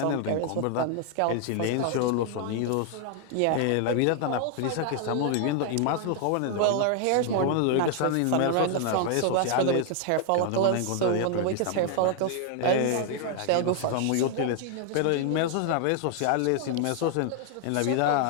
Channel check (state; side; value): different; both; correlation 0.00